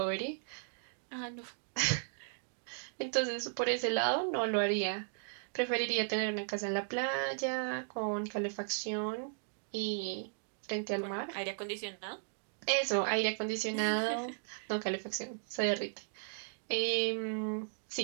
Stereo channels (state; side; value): silent; left; digital silence